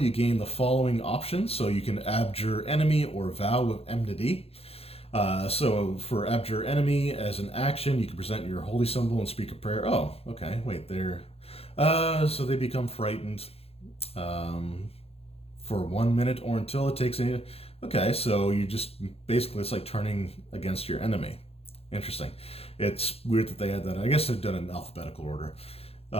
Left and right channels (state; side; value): late; right; 0.29 ms